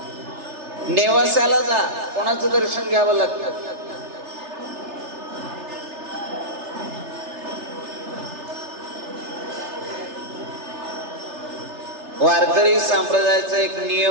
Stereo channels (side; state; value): left; late; 3.3 ms